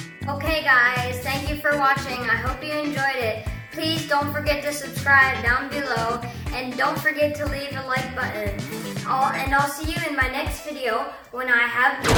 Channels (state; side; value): identical; both; correlation 1.00